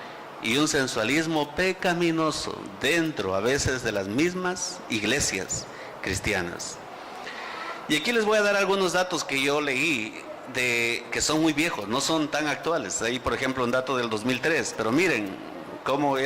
y un sensualismo pecaminoso dentro a veces de las mismas iglesias cristianas. Y aquí les voy a dar algunos datos que yo leí que son muy viejos, no son tan actuales. Hay, por ejemplo, un dato del 2003, pero miren cómo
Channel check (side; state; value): both; identical; correlation 1.00